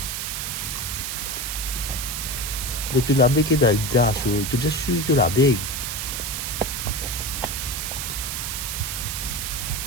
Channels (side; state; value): right; noise; hiss, 3 dB below the sound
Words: Mais tu l'as bec dans le das, tu es bien sûr que tu l'as bec.